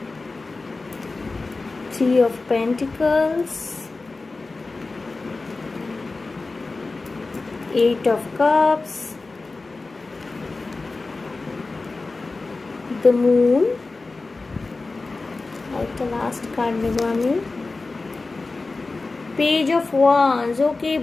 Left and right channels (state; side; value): quieter; right; 3.6 dB